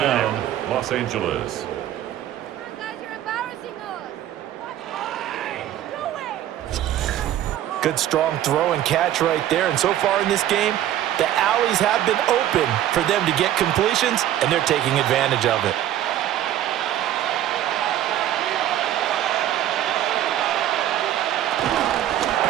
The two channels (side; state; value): left; quieter; 12.2 dB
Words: down, Los Angeles. Good strong throw and catch right there. And so far in this game, the alleys have been open for them to get completions, and they're taking advantage of it.